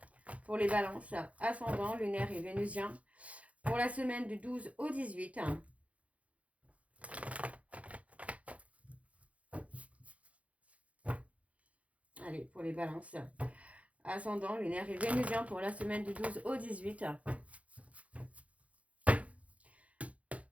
pour les balances, ascendant, lunaire et vénusien pour la semaine du 12 au 18. Allez, pour les balances, ascendant, lunaire et vénusien pour la semaine du 12 au 18.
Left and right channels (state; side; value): late; left; 0.065 ms